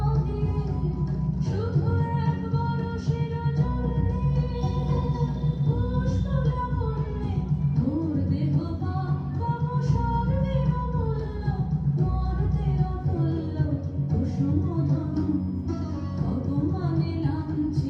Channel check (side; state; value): both; identical; correlation 1.00